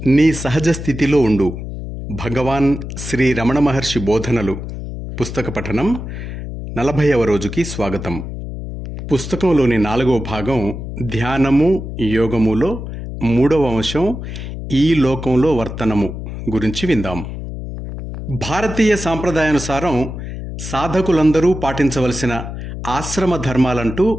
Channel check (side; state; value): left; noise; hum, 8 dB below the sound